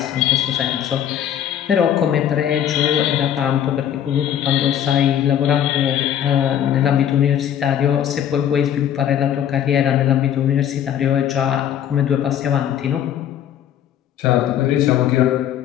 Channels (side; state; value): right; quieter; 10.1 dB